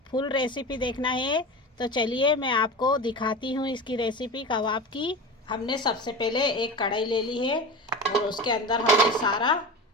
फुल रेसिपी देखना है तो चलिए मैं आपको दिखाती हूँ इसकी रेसिपी कबाब की। हमने सबसे पहले एक कढ़ाई ले ली है और उसके अंदर हम ये सारा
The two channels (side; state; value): both; normal; correlation 0.28